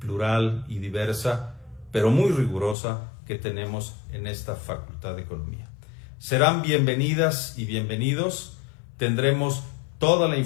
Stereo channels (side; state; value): right; drops out; at 2.8 s